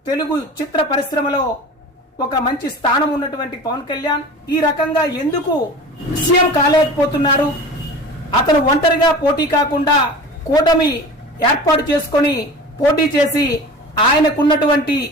తెలుగు చిత్ర పరిశ్రమలో ఒక మంచి స్థానం ఉన్నటువంటి పవన్ కళ్యాణ్ ఈ రకంగా ఎందుకు సీఎం కాలేకపోతున్నారు, అతను ఒంటరిగా పోటీ కాకుండా కూటమి ఏర్పాటు చేసుకొని పోటీ చేసి ఆయనకున్నటువంటి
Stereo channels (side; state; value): both; normal; correlation 0.37